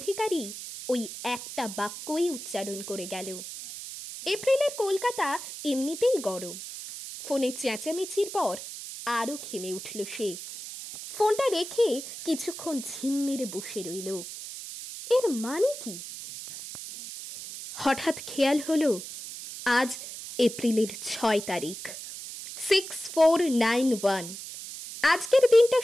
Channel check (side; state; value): right; noise; hiss, 10 dB below the sound